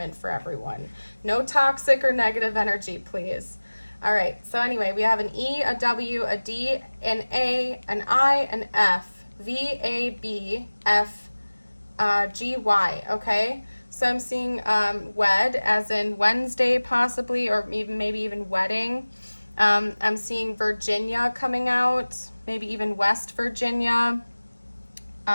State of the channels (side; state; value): both; inverted; correlation -1.00